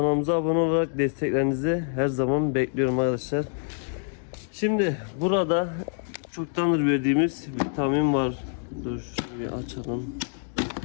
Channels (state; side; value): silent; right; digital silence